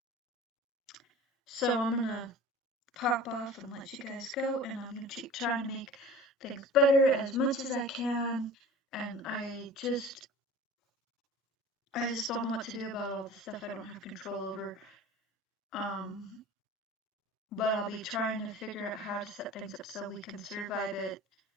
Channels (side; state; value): both; normal; correlation 0.40